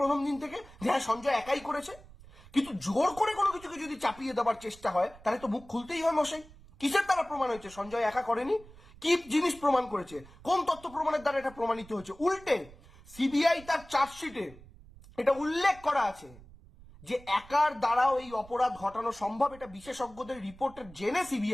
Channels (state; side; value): noise; right; rumble, 21 dB below the sound